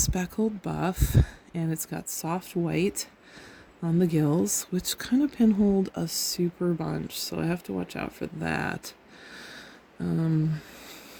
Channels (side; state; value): both; identical; correlation 1.00